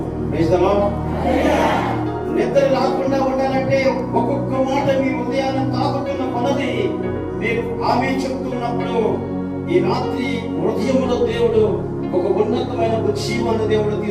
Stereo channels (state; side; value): identical; both; correlation 1.00